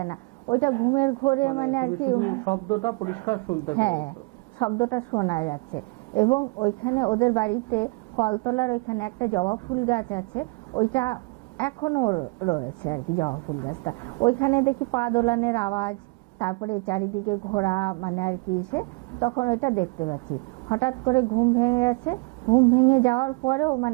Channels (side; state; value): left; quieter; 29.0 dB